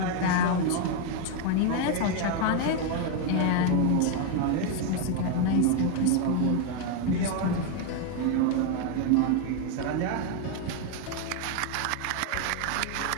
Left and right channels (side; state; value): both; different; correlation 0.01